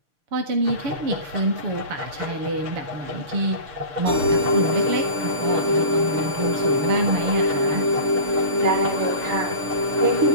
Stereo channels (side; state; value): left; late; 6.6 ms